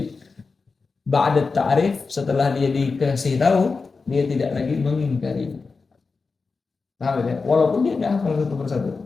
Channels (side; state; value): right; quieter; 4.4 dB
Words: ba'da ta'rif, setelah dia dikasih tahu, dia tidak lagi mengingkari. Paham ya? Walaupun dia tidak hafal satu persatu